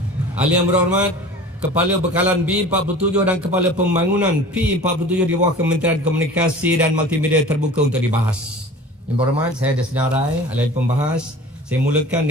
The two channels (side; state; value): both; normal; correlation 0.41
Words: Ahli yang berhormat, Kepala Bekalan B47 dan Kepala Pembangunan P47 di bawah Kementerian Komunikasi dan Multimedia terbuka untuk dibahas. Yang berhormat, saya ada senarai ahli pembahas. Saya mulakan